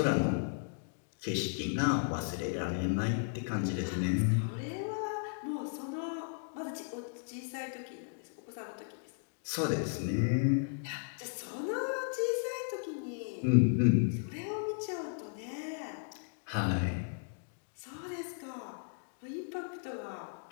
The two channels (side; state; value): right; silent; digital silence